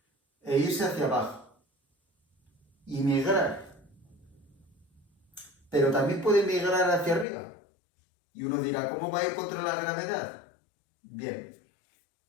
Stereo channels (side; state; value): right; drops out; at 7.2 s